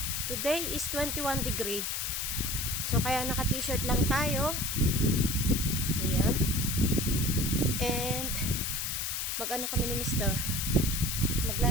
today is 21 degree. So, kaya naka-t-shirt lang tayo. Ayan. And, mag-ano kami ni Mr.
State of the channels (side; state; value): left; noise; hiss, 1 dB below the sound